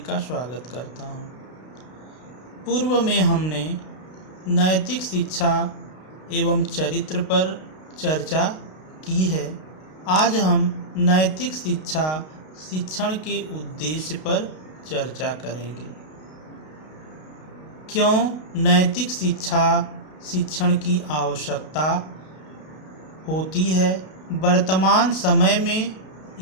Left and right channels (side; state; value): right; late; 32 ms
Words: स्वागत करता हूं। पूर्व में हमने नैतिक शिक्षा एवं चरित्र पर चर्चा की है। आज हम नैतिक शिक्षा शिक्षण के उद्देश्य पर चर्चा करेंगे। क्यों नैतिक शिक्षा शिक्षण की आवश्यकता होती है, वर्तमान समय में